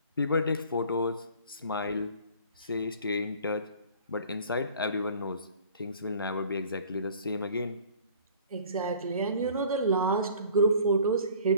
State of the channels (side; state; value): both; inverted; correlation -0.50